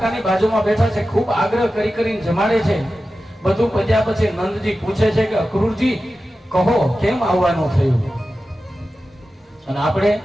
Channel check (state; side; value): normal; both; correlation 0.94